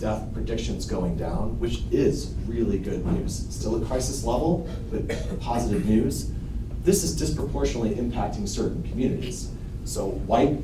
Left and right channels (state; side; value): identical; both; correlation 1.00